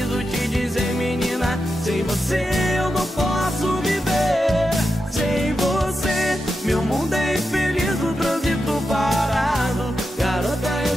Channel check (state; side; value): normal; both; correlation 0.88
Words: te dizer, menina, sem você eu não posso viver. Sem você, meu mundo é infeliz, no trânsito parado. Garota,